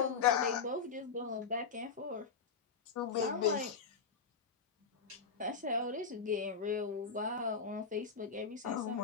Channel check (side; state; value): right; quieter; 5.5 dB